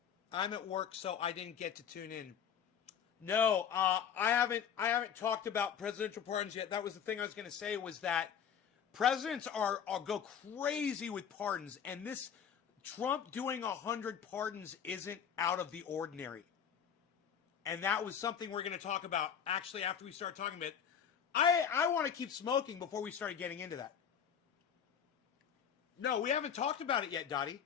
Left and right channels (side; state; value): right; quieter; 8.0 dB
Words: I'm at work, so I didn't get to tune in. No, I haven't talked about presidential pardons yet. That was the thing I was going to say, was that presidents are go crazy with pardons, and this Trump doing 100 pardons isn't out of the ordinary. And that was something we're going to talk about actually after we start talking about it. I want to keep smoking before we started getting into that. No, we haven't talked about it yet, Dottie.